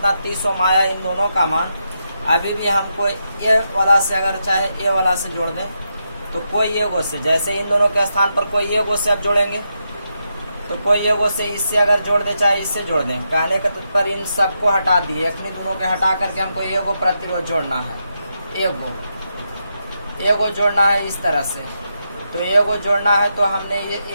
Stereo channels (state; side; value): inverted; both; correlation -0.84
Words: 30 ओम आया इन दोनों का मान, अभी भी हमको ए वाला से अगर चाहे ए वाला से जोड़ दें तो कोई एगो से, जैसे इन दोनों के स्थान पर कोई एगो से अब जोड़ेंगे तो कोई एगो से इससे अगर जोड़ दे चाहे इससे जोड़ दें। कहने के पर इन सबको हटा दिए, एक दोनों के हटा करके हमको एगो प्रतिरोध जोड़ना है, एगो जोड़ना है इस तरह से। तो एगो जोड़ना है तो हमने ये